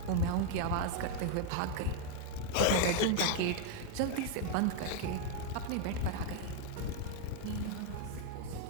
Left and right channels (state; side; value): different; both; correlation 0.01